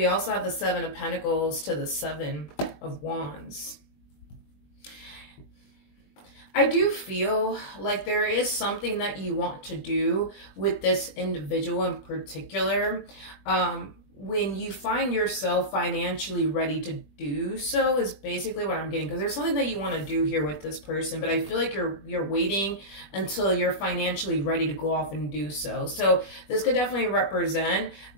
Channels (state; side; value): late; right; 20 ms